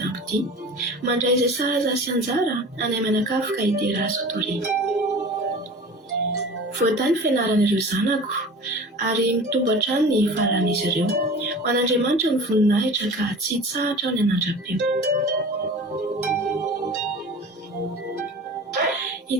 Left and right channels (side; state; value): both; normal; correlation 0.38